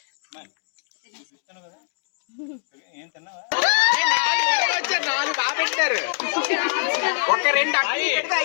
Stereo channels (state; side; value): silent; right; digital silence